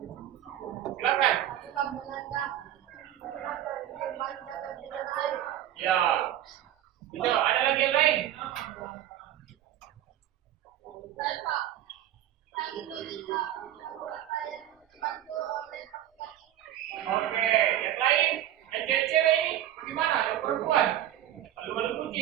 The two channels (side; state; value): left; quieter; 12.1 dB